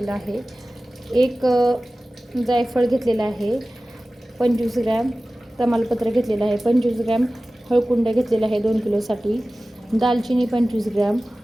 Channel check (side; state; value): both; normal; correlation 0.97